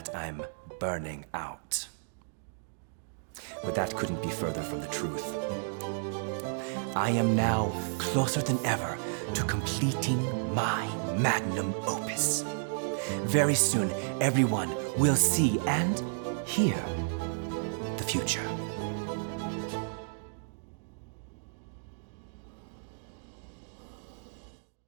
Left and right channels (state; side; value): silent; left; digital silence